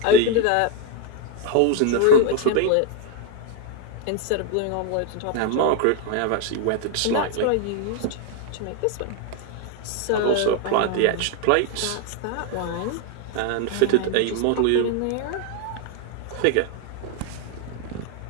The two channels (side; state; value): both; different; correlation 0.01